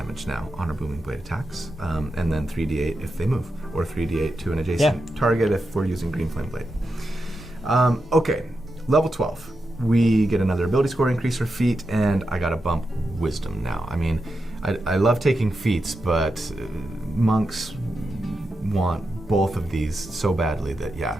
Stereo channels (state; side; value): normal; both; correlation 0.88